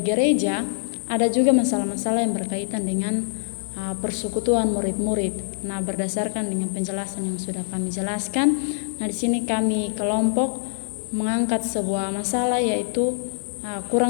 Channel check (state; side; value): silent; right; digital silence